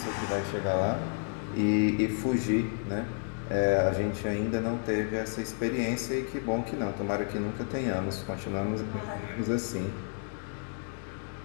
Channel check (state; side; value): silent; right; 57 dB below the other